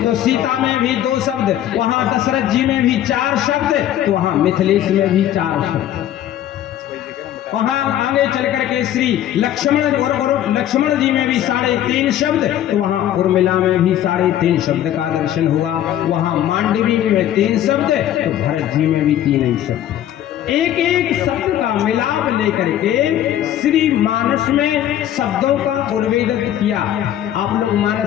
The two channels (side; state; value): right; quieter; 11.7 dB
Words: सीता में भी 2 शब्द, वहां दशरथ जी में भी 4 शब्द, तो वहां मिथिलेश में भी 4 शब्द, वहां आगे चल करके श्री लक्ष्मण और लक्ष्मण जी में भी 3.5 शब्द, तो वहां उर्मिला में भी 3.5 शब्द का दर्शन हुआ, वहां मांडवी में 3 शब्द, तो भरत जी में भी 3 ही शब्द, एक एक शब्द का मिलाप लेकर के श्री मानस में शब्दों का उर्वेदित किया। आप लोग